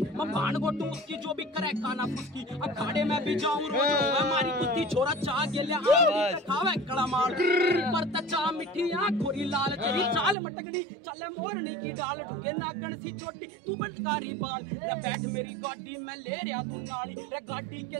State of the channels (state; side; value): drops out; left; at 10.4 s